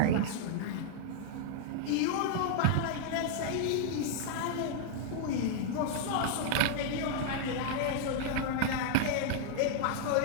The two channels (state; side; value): different; both; correlation -0.01